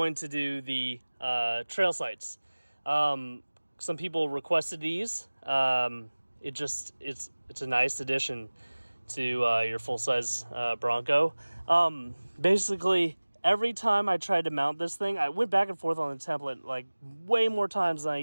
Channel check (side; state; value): both; inverted; correlation -1.00